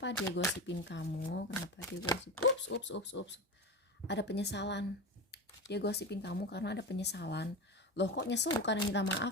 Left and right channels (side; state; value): both; normal; correlation 0.23